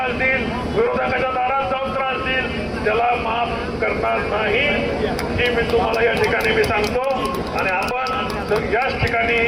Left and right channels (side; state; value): both; identical; correlation 1.00